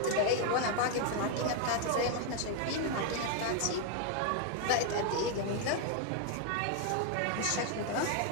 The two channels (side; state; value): both; different; correlation 0.01